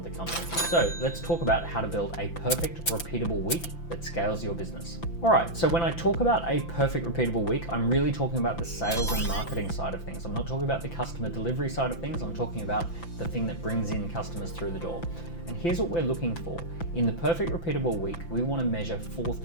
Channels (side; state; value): right; late; 5.9 ms